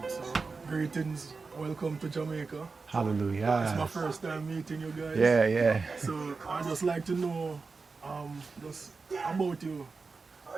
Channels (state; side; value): quieter; left; 4.4 dB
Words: So, greetings, welcome to Jamaica. Hallelujah. It's my first time meeting you guys. Yeah. So I just like to know just about you,